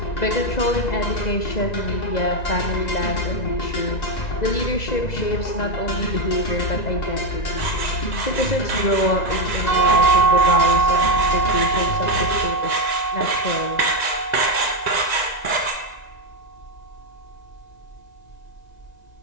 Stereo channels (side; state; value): right; late; 1.9 ms